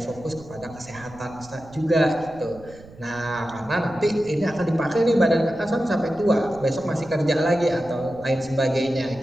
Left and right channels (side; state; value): right; noise; rumble, 20 dB below the sound